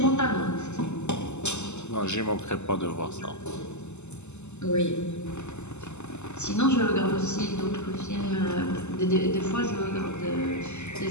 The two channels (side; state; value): right; late; 0.83 ms